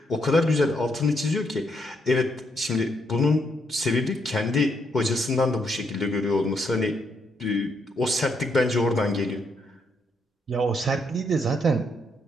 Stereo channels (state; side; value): normal; both; correlation 0.76